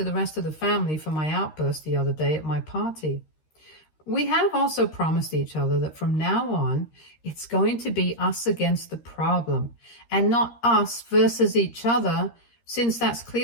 the rest of the family for my outburst the other day at my party. We have also promised each other that from now on, it's going to be us against the problem and not us versus each other, since that's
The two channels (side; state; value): right; late; 13 ms